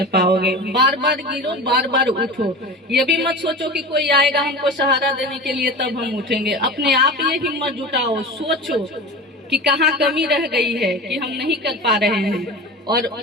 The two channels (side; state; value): both; normal; correlation 0.31